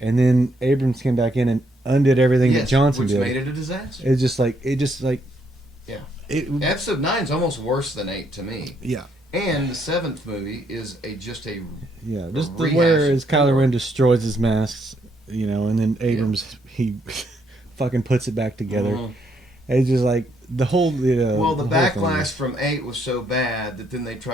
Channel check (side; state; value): both; normal; correlation 0.73